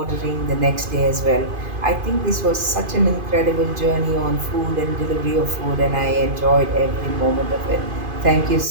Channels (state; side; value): late; left; 2.5 ms